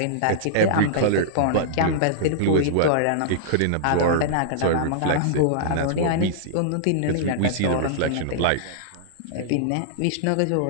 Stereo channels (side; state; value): both; different; correlation -0.02